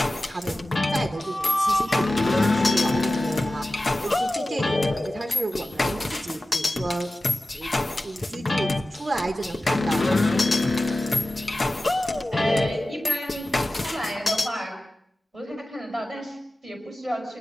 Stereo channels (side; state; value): both; normal; correlation 0.95